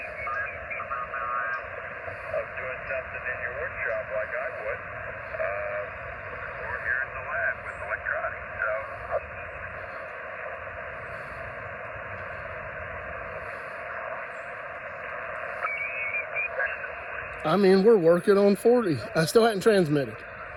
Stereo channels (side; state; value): both; identical; correlation 1.00